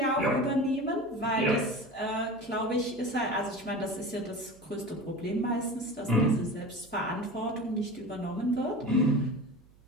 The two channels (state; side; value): noise; right; hum, 27 dB below the sound